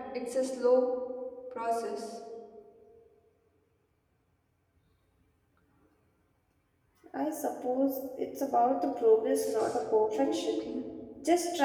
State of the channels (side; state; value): both; identical; correlation 1.00